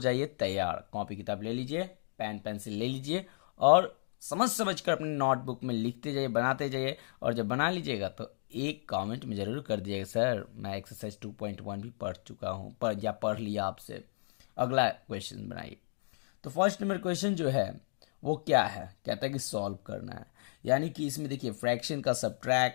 तैयार। कॉपी किताब ले लीजिए, पेन पेंसिल ले लीजिए और समझ समझ कर अपने नोटबुक में लिखते जाइए, बनाते जाइए। और जब बना लीजिएगा तो एक कमेंट में ज़रूर कर दीजिएगा, सर मैं एक्सरसाइज 2.1 भी पढ़ चुका हूँ या पढ़ लिया आपसे। अगला क्वेश्चन बनाइए। तो फर्स्ट नंबर क्वेश्चन जो है वो क्या है, कहता है कि सॉल्व करना है। यानी कि इसमें देखिए फ्रैक्शन का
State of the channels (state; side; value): silent; right; digital silence